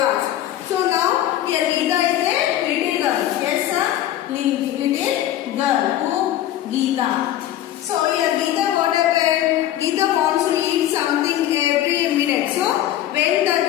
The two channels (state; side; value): quieter; right; 12.6 dB